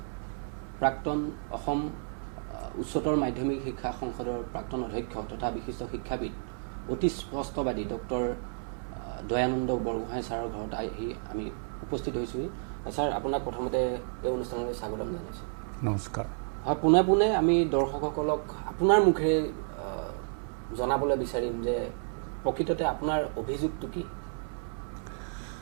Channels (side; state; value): left; silent; 57 dB below the other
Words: প্ৰাক্তন অসম উচ্চতৰ মাধ্যমিক শিক্ষা সংসদৰ প্ৰাক্তন অধ্যক্ষ তথা বিশিষ্ট শিক্ষাবিদ অতি স্পষ্টবাদী ডক্টৰ দয়ানন্দ বৰগোহাঁই ছাৰৰ ঘৰত আহি আমি উপস্থিত হৈছোঁহি। ছাৰ, আপোনাক প্ৰথমতে এই অনুষ্ঠানলৈ স্বাগতম জনাইছোঁ। নমস্কাৰ। হয়, পোনে পোনে আমি দৰ্শকসকলক আপোনাৰ মুখেৰে জনাবলৈ বিচাৰিম যে প্ৰকৃততে আপোনাৰ অভিযোগটো কি?